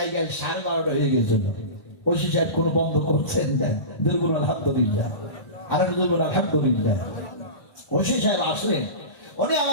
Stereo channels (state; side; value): late; right; 1.9 ms